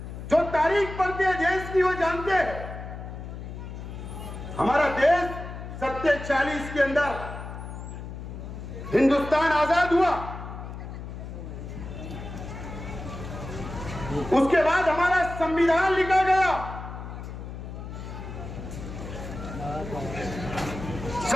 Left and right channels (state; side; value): noise; left; hum, 9 dB below the sound